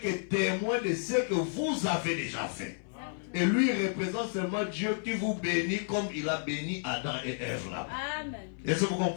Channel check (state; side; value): silent; right; 57 dB below the other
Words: témoin de ce que vous avez déjà fait. Et lui représente seulement Dieu qui vous bénit comme il a béni Adam et Ève là. Est-ce que vous